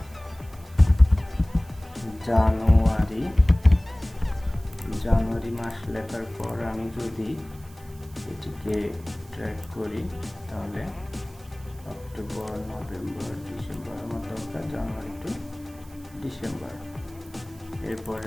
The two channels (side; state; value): right; noise; hiss, 25 dB below the sound